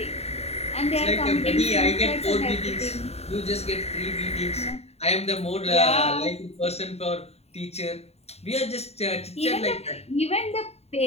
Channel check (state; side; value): late; right; 0.30 ms